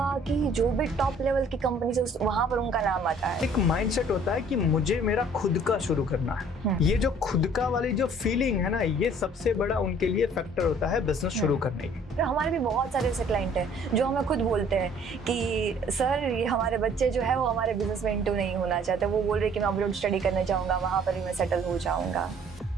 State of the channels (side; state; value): both; normal; correlation 0.56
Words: कि जो भी टॉप लेवल की कंपनीज है वहां पर उनका नाम आता है। एक माइंडसेट होता है कि मुझे मेरा खुद का शुरू करना है। ये जो खुद का वाली जो फीलिंग है ना, ये सबसे बड़ा उनके लिए फैक्टर होता है बिजनेस शुरू करने की। तो हमारे भी बहुत सारे ऐसे क्लाइंट हैं जो हमें खुद बोलते हैं कि सर ये हमारे बच्चे जो है वो हमारे बिजनेस में इंटू नहीं होना चाहते। वो बोल रहे कि मैं अब्रॉड स्टडी करने जाऊंगा, वहां पर ही मैं सेटल हो जाऊंगा।